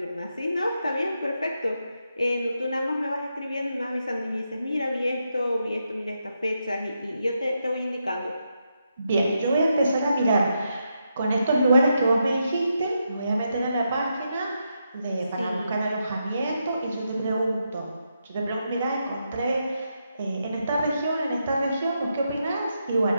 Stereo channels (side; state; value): both; inverted; correlation -0.83